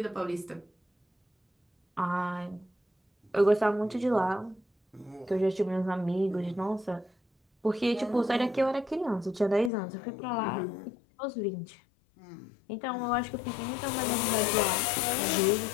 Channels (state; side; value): drops out; right; at 9.7 s